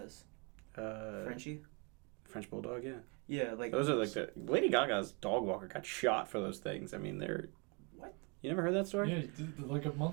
Frenchie? French bulldog, yeah. Yeah, like those are like the Lady Gaga's dog walker got shot for those things. I mean, they're what? You never heard that story? Yeah, like a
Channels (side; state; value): left; quieter; 32.5 dB